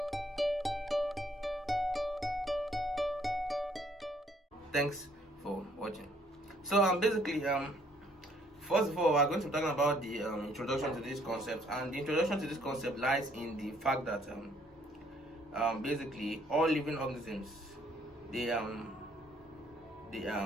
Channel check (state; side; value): normal; both; correlation 0.65